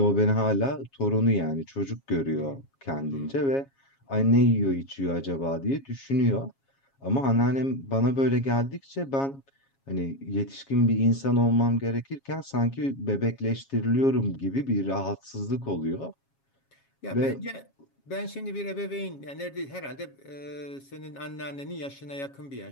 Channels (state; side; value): late; right; 7.3 ms